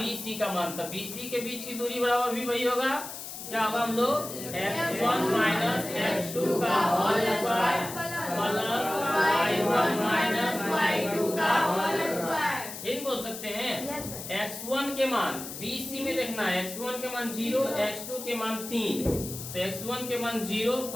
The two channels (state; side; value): noise; left; hiss, 10 dB below the sound